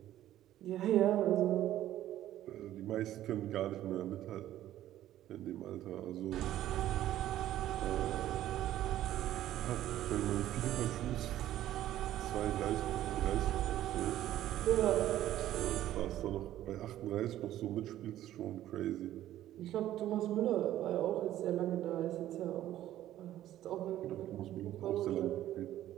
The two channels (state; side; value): quieter; left; 13.1 dB